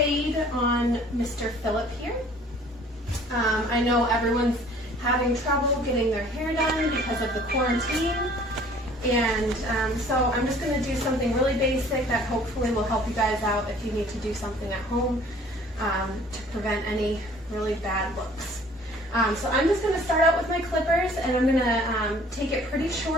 on Mr. Philip here. I know everyone's having trouble getting their hair done because of the quarantine, and so I'm just going to do something really basic that hopefully will help you guys out if you need to do something at home to prevent any really bad looks. So I'm just going to start out with my clippers, and I'm going to take it pretty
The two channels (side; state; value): both; normal; correlation 0.53